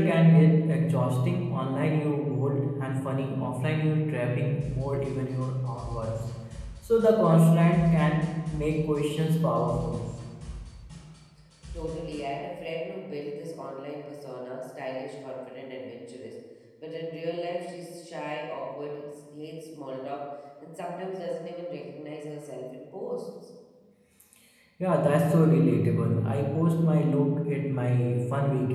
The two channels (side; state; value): both; identical; correlation 1.00